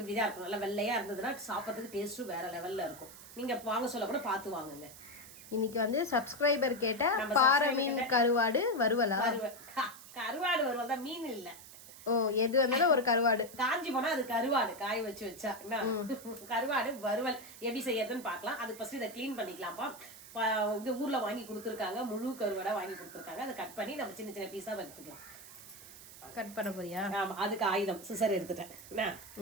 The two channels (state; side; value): noise; right; hiss, 17 dB below the sound